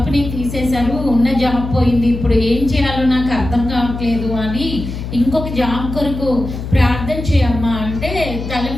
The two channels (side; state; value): left; noise; hum, 7 dB below the sound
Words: తీసేశారు, ఉన్న జాబ్ పోయింది, ఇప్పుడు ఏం చేయాలో నాకు అర్థం కావట్లేదు అని ఇంకొక జాబ్ కొరకు ప్రార్థన చేయమ్మా అంటే తల